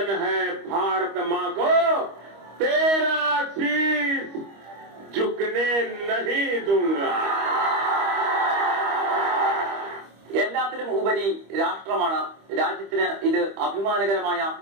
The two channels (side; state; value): left; late; 25 ms